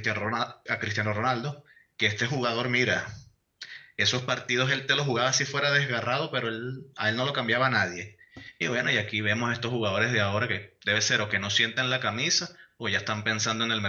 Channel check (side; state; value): both; identical; correlation 1.00